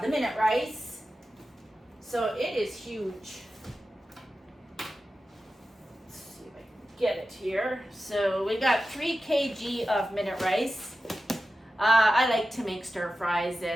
minute rice. So it is huge. Get it here. So we got 3 kg of minute rice. I like to make stir fries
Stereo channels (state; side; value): normal; both; correlation 0.93